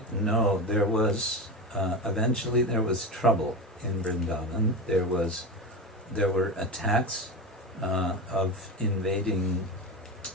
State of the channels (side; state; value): both; normal; correlation 0.22